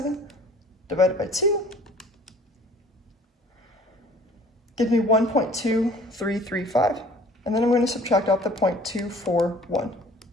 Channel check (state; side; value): normal; both; correlation 0.51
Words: divided by 2 gives me 1.2335. And then I'm going to subtract off the 0.241.